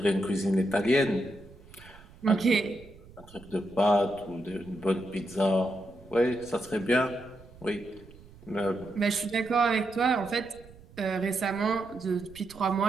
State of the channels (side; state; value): right; noise; rumble, 22 dB below the sound